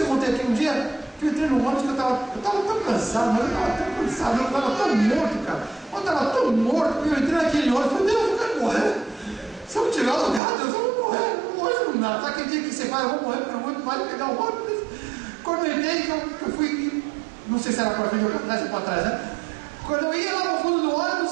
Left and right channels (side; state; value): left; drops out; at 10.4 s